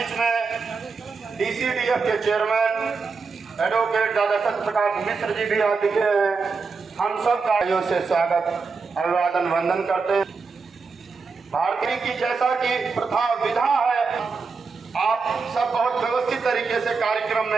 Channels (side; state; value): left; quieter; 4.7 dB